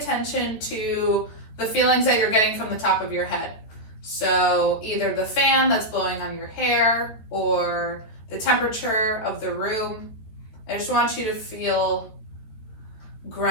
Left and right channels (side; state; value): right; late; 14 ms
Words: to the feelings that you're getting from the top of your head. So either the fan that's blowing on your hair or the temperature of the room. I just want you to feel